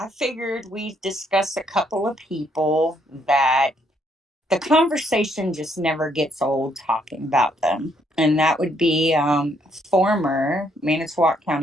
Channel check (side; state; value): both; normal; correlation 0.71